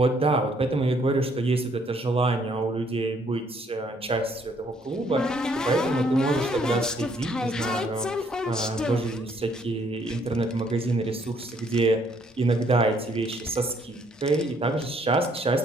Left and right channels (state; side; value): normal; both; correlation 0.67